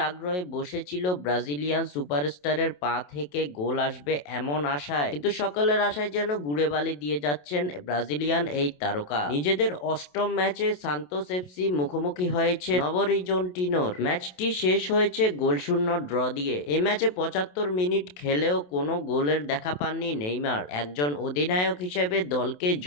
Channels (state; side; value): late; right; 27 ms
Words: আগ্রহে বসেছিল ব্রাজিলিয়ান সুপারস্টারের পা থেকে গোল আসবে এমন আশায়, কিন্তু সকলের আশায় যেন গুড়ে বালি দিয়ে যাচ্ছেন ব্রাজিলিয়ান এই তারকা। নিজেদের অষ্টম ম্যাচে সান্তোস এফসি মুখোমুখি হয়েছে নবরিজন্টিনোর। ম্যাচটি শেষ হয়েছে গোলশূন্য ড্র দিয়ে। এই ম্যাচে 75 মিনিট খেলেও কোনো গোলের দেখা পাননি নেইমার। একজন অধিনায়ক হিসেবে দলকে